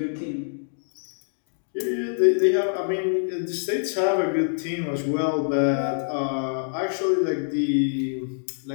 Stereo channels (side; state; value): right; silent; digital silence